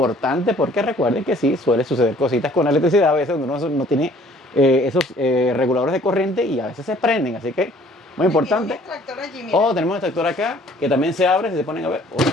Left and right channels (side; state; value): both; normal; correlation 0.56